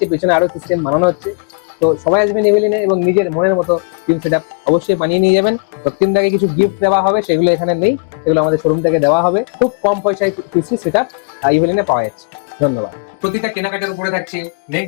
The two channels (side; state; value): right; quieter; 38.5 dB